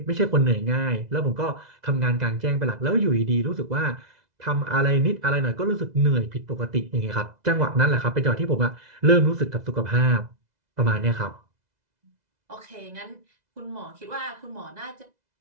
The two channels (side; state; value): left; late; 2.0 ms